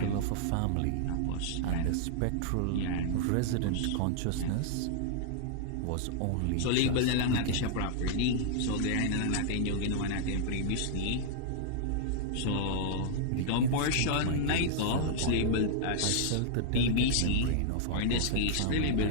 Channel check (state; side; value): different; both; correlation -0.01